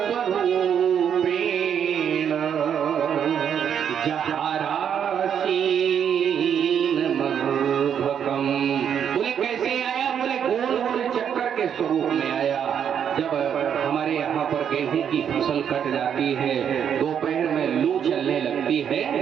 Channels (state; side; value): quieter; left; 8.4 dB